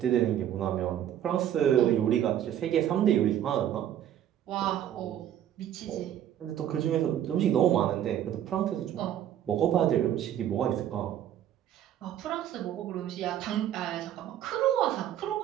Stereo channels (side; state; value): left; quieter; 10.9 dB